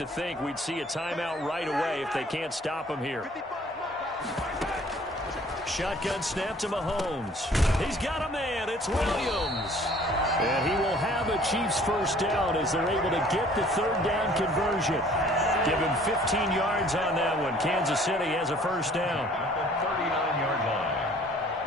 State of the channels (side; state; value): both; normal; correlation 0.54